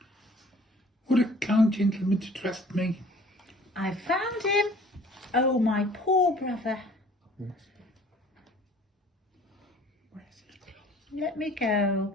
Would a kind gentleman to trust me? I found him. Oh, my poor brother. Let me go.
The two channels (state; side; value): normal; both; correlation 0.51